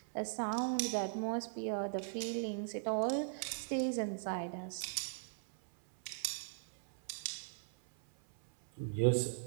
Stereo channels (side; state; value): left; silent; 52 dB below the other